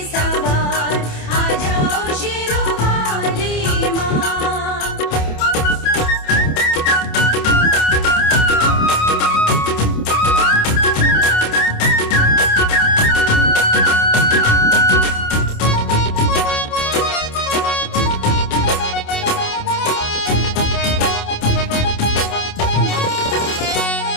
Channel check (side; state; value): right; late; 27 ms